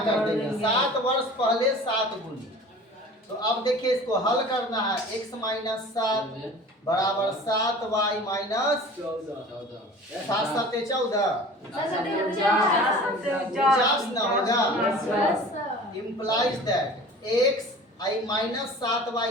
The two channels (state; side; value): normal; both; correlation 0.42